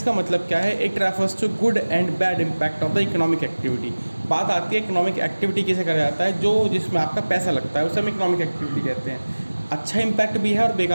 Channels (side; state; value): both; inverted; correlation -1.00